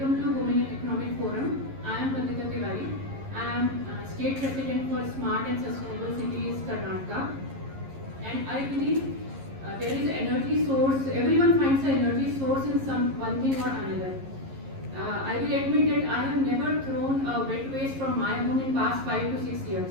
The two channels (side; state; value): left; late; 11 ms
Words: to Women in Economic Forum. I am Pratika Tiwari. I am State President for Smart and Sustainable Cities, Karnataka. And I believe there is energy source. Everyone finds an energy source in some one thing or another. I will admit that I have never thrown a wet waste from my home in past 5 to 6 years.